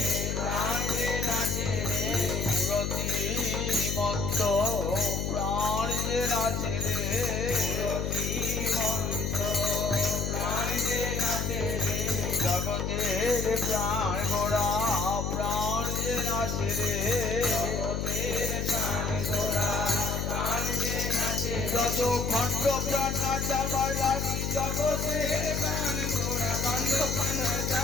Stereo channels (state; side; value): noise; left; hum, 1 dB below the sound